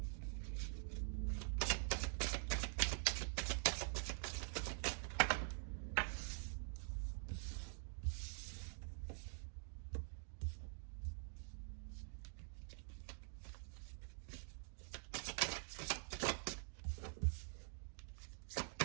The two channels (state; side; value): silent; left; digital silence